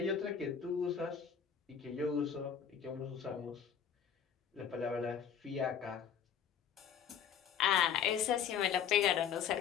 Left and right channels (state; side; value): quieter; right; 8.0 dB